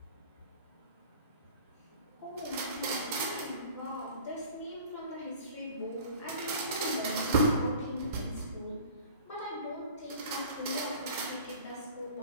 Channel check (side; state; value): both; inverted; correlation -0.45